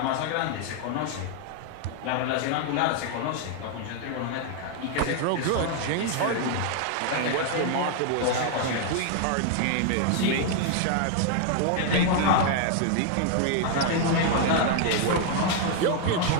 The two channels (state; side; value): different; both; correlation 0.00